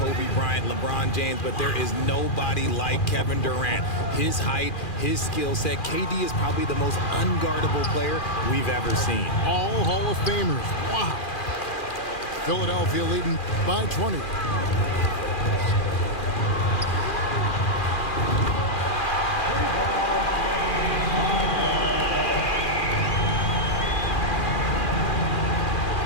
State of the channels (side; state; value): right; late; 2.4 ms